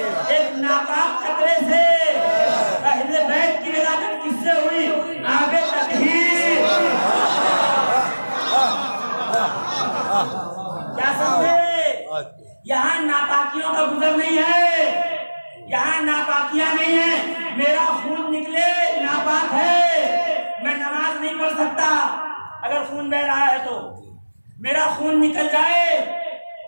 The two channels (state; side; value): inverted; both; correlation -1.00